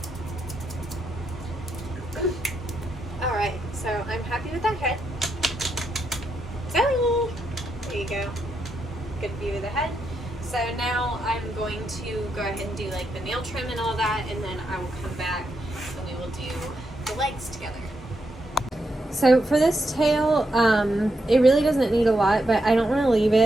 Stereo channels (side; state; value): both; normal; correlation 0.82